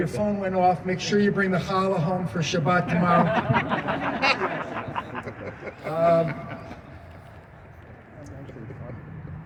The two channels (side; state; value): both; identical; correlation 1.00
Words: phone went off. Make sure you bring the challah home for Shabbat tomorrow.